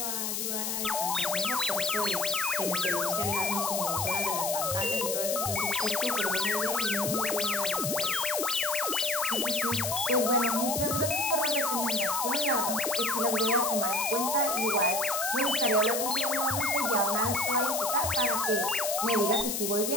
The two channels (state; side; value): noise; left; hiss, 1 dB below the sound